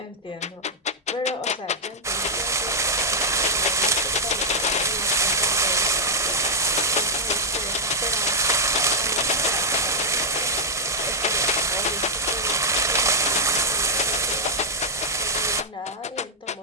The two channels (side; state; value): both; normal; correlation -0.06